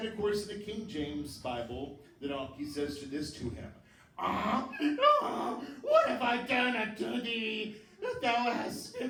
of course, in the King James Bible, the donkey says this to him. What have I done unto thee, that thou hast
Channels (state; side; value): identical; both; correlation 1.00